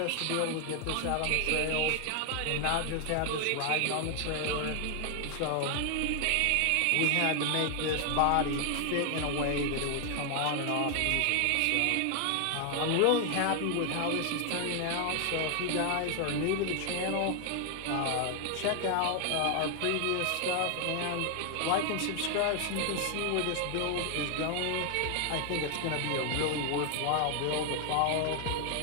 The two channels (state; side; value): different; both; correlation 0.00